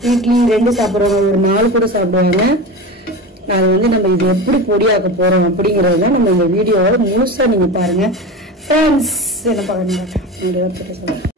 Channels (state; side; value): normal; both; correlation 0.28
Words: வீட்லி 2 சாப்பிட்றவங்க ஒரு 4 கூட சாப்பிடுவாங்க. அது வந்து நம்ம இது எப்படி பொடியாக்க போறோம் அப்படிங்கறத நம்ம இந்த வீடியோவோட முழுசா நீங்க பாருங்க. ஃப்ரெண்ட்ஸ் என்ன பாருங்க